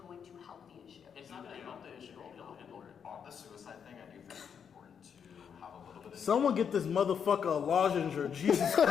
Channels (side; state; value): right; quieter; 7.4 dB